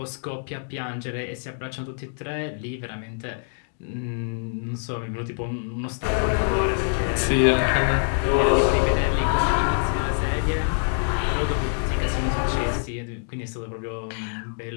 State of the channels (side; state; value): right; silent; digital silence